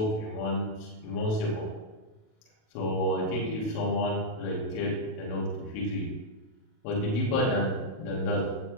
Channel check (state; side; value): late; right; 37 ms